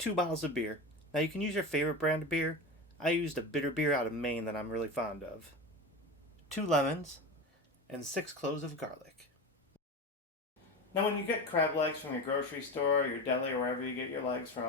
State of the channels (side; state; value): both; normal; correlation 0.25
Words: bottles of beer. Now you can use your favorite brand of beer. I used a bitter beer out of Maine that I'm really fond of. 2 lemons and 6 cloves of garlic. Now when you get crab legs from your grocery store, your deli, or wherever you get your legs